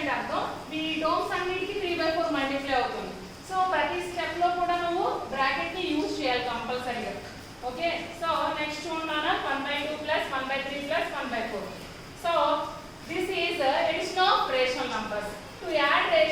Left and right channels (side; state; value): both; identical; correlation 1.00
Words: అర్థం ఈ టర్మ్స్ అన్నిటికీ 3 by 4 మల్టిప్లై అవుతుంది. సో ప్రతి స్టెప్ లో కూడా నువ్వు బ్రాకెట్ ని యూజ్ చేయాలి కంపల్సరీగా. ఓకే, సో నెక్స్ట్ చూడండి 1 by 2 plus 1 by 3 plus 1 by 4. So this is addition of rational numbers. To add